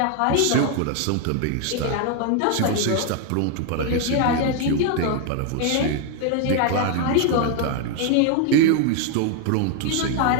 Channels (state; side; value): different; both; correlation 0.00